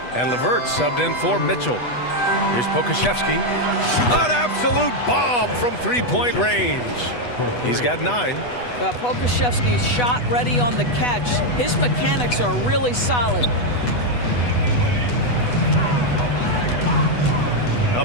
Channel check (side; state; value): right; late; 8.2 ms